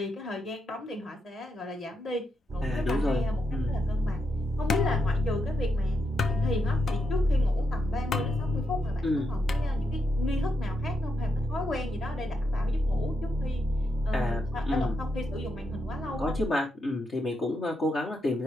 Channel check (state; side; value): normal; both; correlation 0.82